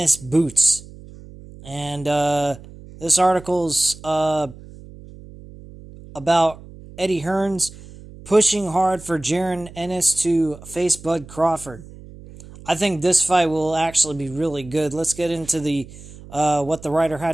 boots. And this article's about Eddie Hearns pushing hard for Jaron Ennis to face Bud Crawford. I think this fight will actually be really good. Let's get into the what the writer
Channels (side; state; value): right; noise; hum, 18 dB below the sound